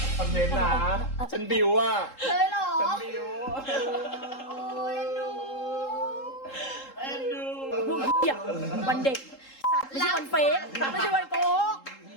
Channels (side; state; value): right; late; 3.7 ms